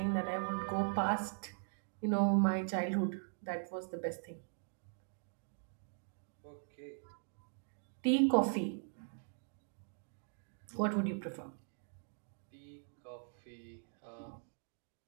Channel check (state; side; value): silent; left; digital silence